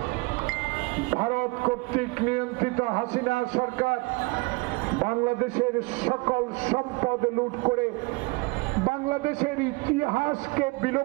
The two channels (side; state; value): left; quieter; 26.2 dB